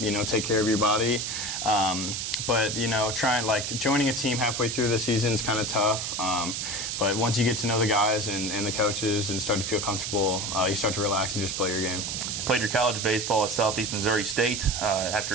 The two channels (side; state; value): right; noise; hiss, 3 dB below the sound